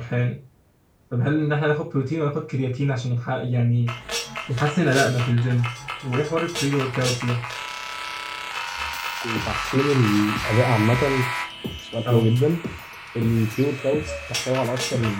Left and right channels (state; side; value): identical; both; correlation 1.00